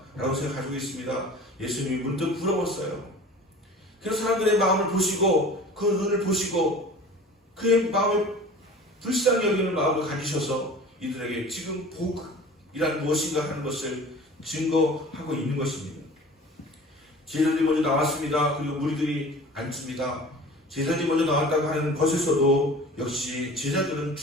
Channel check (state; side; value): normal; both; correlation 0.42